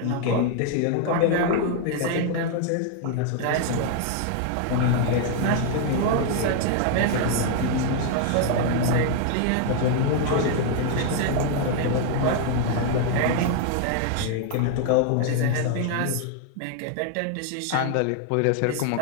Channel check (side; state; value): both; different; correlation 0.00